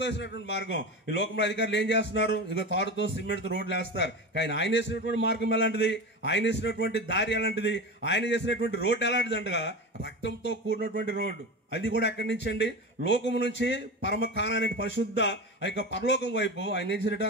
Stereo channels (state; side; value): normal; both; correlation 0.26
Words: వేసినటువంటి మార్గం. ఈ లోకంలో అధికారులు ఏం చేస్తున్నారు? ఇక తాడుతో, సిమెంట్తో రోడ్లు వేస్తారు. కానీ ఆయన వేసినటువంటి మార్గం ఎలాంటిది? ఆయన వేసినటువంటి దారి ఎలాంటిది? ఆయన చేసినటువంటి రోడ్డు ఎలాంటిది అంటగా రక్తంతో కూడినటువంటి రోడ్డు. అది కూడా ఎక్కడి నుంచి అండి? లోకము నుంచి పరమ కానానే పరిశుద్ధ ఆ యొక్క పరలోకం వైపు ఆయన ఏం చేశాడట?